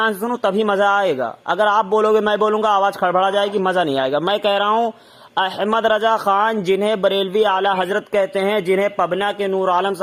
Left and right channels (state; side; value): identical; both; correlation 1.00